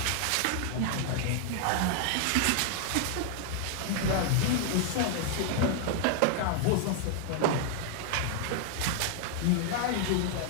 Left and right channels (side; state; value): both; different; correlation -0.01